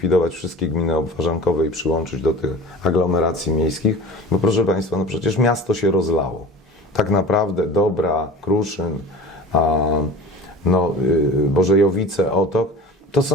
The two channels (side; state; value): both; normal; correlation 0.37